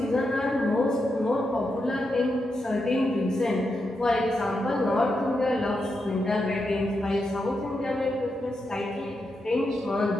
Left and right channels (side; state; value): both; normal; correlation 0.85